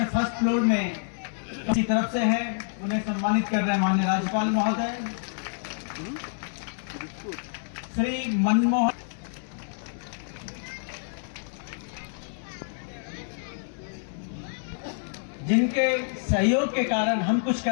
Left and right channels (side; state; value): right; silent; digital silence